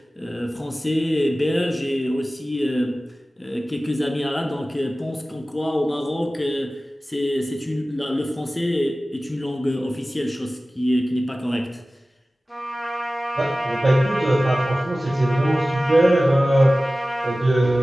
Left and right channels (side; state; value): both; normal; correlation 0.96